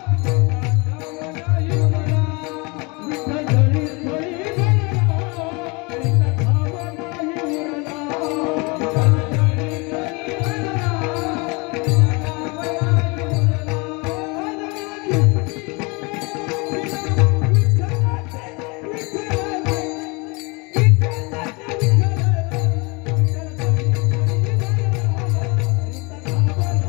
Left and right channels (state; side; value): quieter; right; 28.6 dB